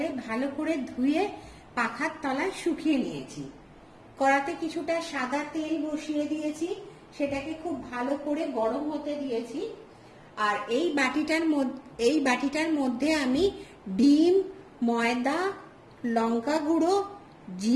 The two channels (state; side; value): identical; both; correlation 1.00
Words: ভালো করে ধুয়ে পাখার তলায় শুকিয়ে নিয়েছি। কড়াতে কিছুটা সাদা তেল বসিয়ে দিয়েছি, সেটাকে খুব ভালো করে গরম হতে দিয়েছি। আর এই বাটিটার মধ্যে আমি ডিম, ময়দা, লঙ্কা গুঁড়ো,